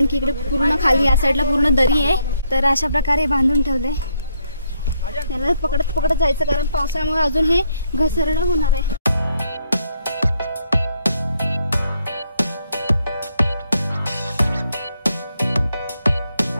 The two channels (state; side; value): inverted; both; correlation -0.75